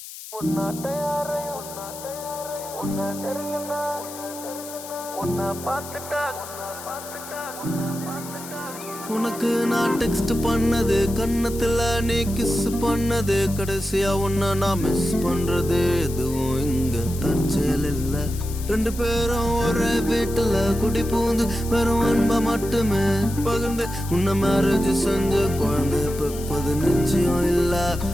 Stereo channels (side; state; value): left; noise; hiss, 13 dB below the sound